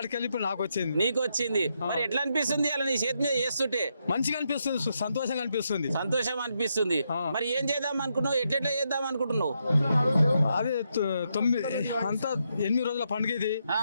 ఇప్పుడు నాకు వచ్చింది. నీకు వచ్చింది. మరి ఎట్లా అనిపిస్తుంది అలా నీ చేతి మీద చేస్తుంటే? మంచిగా అనిపిస్తుంది, సంతోషంగా అనిపిస్తుంది. సంతోషం అనిపిస్తుంది. మరి ఏం చేద్దాం అనుకున్నావు? ఎట్లా చేద్దాం అనుకుంటున్నావు? అదే 8 రోజుల పండుగ ఇది.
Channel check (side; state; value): both; inverted; correlation -0.80